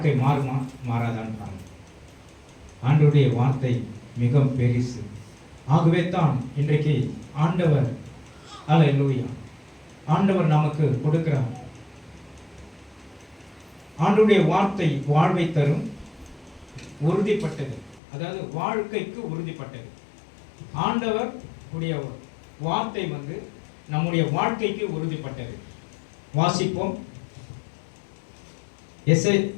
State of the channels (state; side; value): drops out; right; at 18.0 s